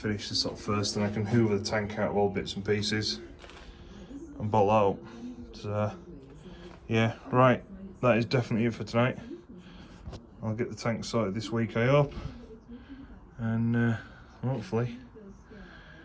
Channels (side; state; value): both; identical; correlation 1.00